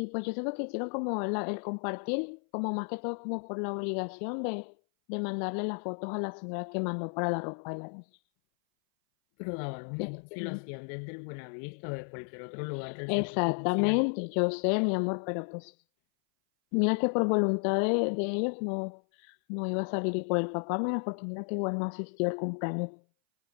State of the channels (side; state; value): right; silent; 56 dB below the other